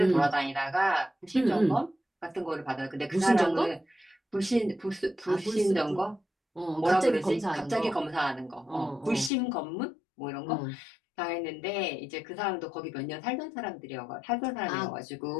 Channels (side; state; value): right; drops out; at 9.3 s